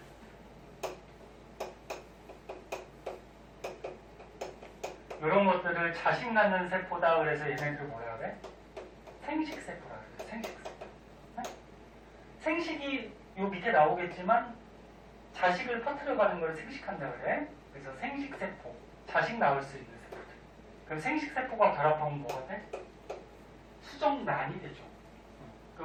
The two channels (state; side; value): identical; both; correlation 1.00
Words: 이런 것들을 자식 낳는 세포다 그래서 얘네들 뭐라 그래? 생식세포라 그래. 생식세포. 네? 생식이 요 밑에 나오겠지만 자식을 퍼뜨려가는 걸 생식한다 그래. 그래서 생식세포. 자식 낳을 수 있는 세포들. 그럼 생식세포가 결합하면 뭐가 돼? 수정난이 되죠.